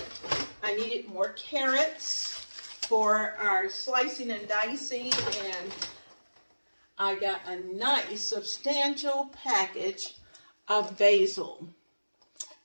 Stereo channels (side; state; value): both; inverted; correlation -1.00